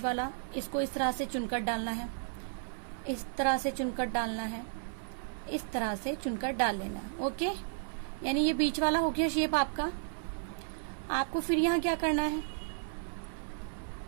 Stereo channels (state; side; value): silent; left; 55 dB below the other